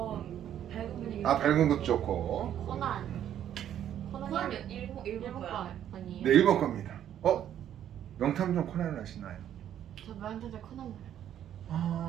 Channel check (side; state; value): left; quieter; 10.5 dB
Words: 밝은 분위기. 밝은 것도 좋고. 코난. 코난 일본 거야. 거 아니에요? 네, 일본 겁니다. 명탐정 코난을 아시나요? 저 명탐정 코난